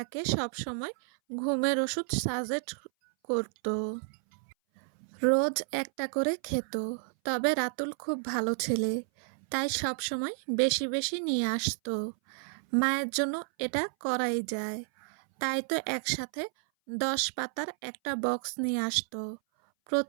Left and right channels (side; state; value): left; silent; 57 dB below the other